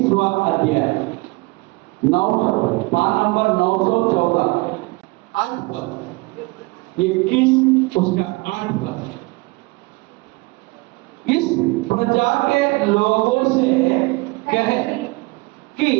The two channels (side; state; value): left; quieter; 24.6 dB